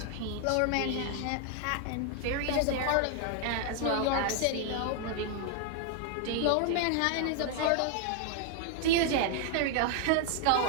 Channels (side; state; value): both; different; correlation 0.00